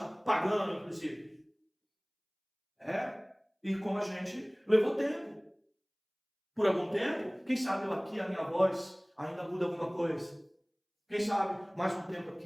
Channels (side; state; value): both; identical; correlation 1.00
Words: pagano, inclusive. E como a gente levou tempo. Por algum tempo, quem sabe eu aqui, a minha voz, ainda muda alguma coisa. Quem sabe, mais um tempo